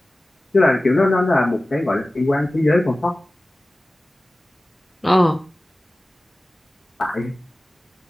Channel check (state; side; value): normal; both; correlation 0.97